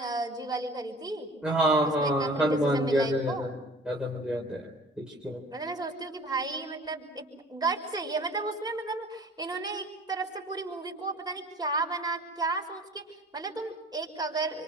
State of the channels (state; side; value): normal; both; correlation 0.47